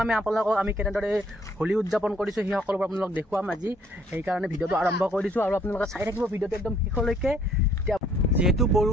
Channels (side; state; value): both; normal; correlation 0.64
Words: আমি আপোনালোকক আমি কেনেদৰে হোলী উদযাপন কৰিছোঁ সেই সকলোবোৰ আপোনালোকক দেখুৱাম আজি। সেইকাৰণে ভিডিঅ'টো আৰম্ভ কৰি দিছোঁ আৰু আপোনালোকে চাই থাকিব ভিডিঅ'টো একদম শেষলৈকে। এতিয়া যিহেতু